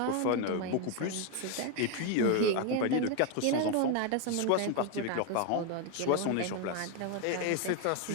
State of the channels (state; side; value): different; both; correlation 0.02